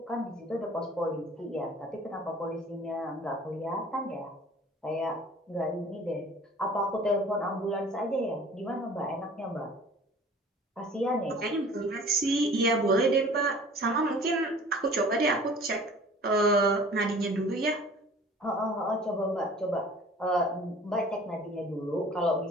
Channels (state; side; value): normal; both; correlation 0.47